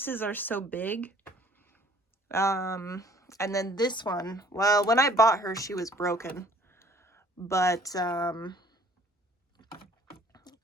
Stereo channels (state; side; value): normal; both; correlation 0.55